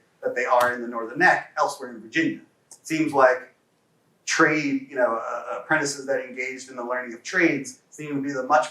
that they are in the Northern Neck elsewhere in Virginia. It seems like trade, apprentices that engaged in the learning of trades seem to be the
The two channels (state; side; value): identical; both; correlation 1.00